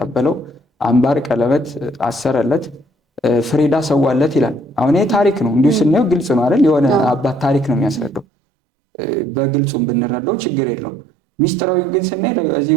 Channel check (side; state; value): left; drops out; at 8.2 s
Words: አምባር ቀለበት አሰረለት፣ ፍሪዳ ሰዋለት ይላል። አሁን ይሄ ታሪክ ነው፣ እንዲሁ ስናየው ግልጽ ነው አይደል? የሆነ አባት ታሪክ ነው የሚያስረዳው። በግልጹም ብንረዳው ችግር የለውም። ሚስጥራዊ ግን ስናይ እዚህ